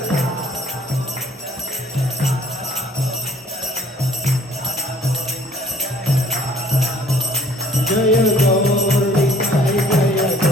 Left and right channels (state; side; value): normal; both; correlation 0.55